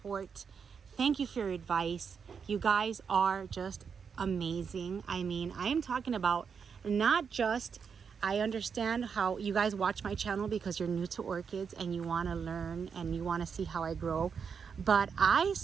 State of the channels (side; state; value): left; quieter; 6.4 dB